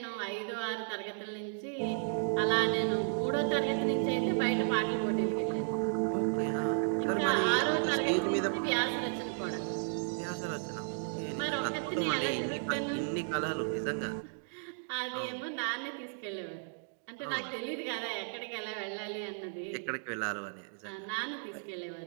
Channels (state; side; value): silent; left; digital silence